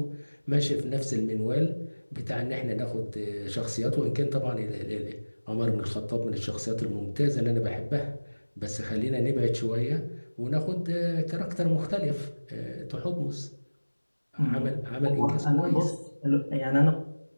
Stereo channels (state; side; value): inverted; both; correlation -1.00